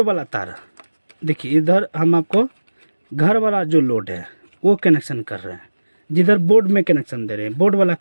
वाला तार। देखिए इधर हम आपको घर वाला जो लोड है वो कनेक्शन कर रहे हैं, जिधर बोर्ड में कनेक्शन दे रहे हैं, बोर्ड वाला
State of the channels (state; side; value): inverted; both; correlation -1.00